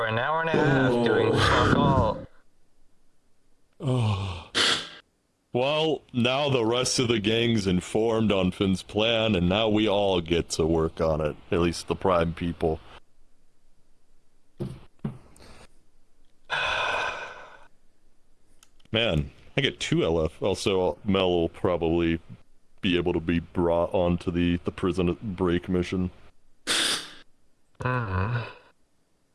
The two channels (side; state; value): both; identical; correlation 1.00